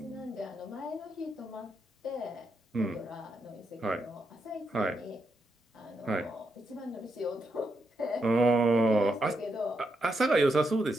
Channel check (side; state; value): both; normal; correlation 0.82